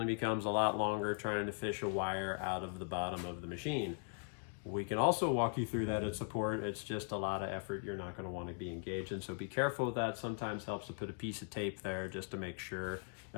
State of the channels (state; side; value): silent; right; 51 dB below the other